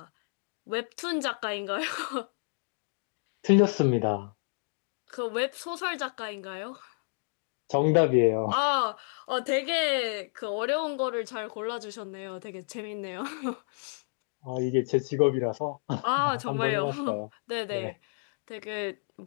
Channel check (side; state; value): right; silent; 58 dB below the other